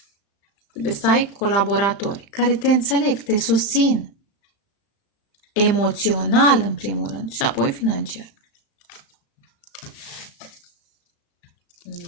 Trebuie să ai colaboratori care te înțeleg, te susțin. emoțional în primul rând și apoi financiar.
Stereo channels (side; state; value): right; late; 35 ms